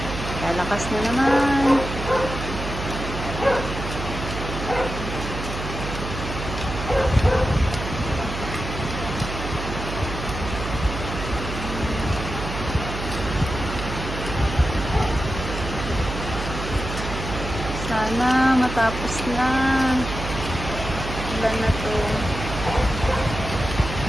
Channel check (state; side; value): noise; right; hum, 6 dB below the sound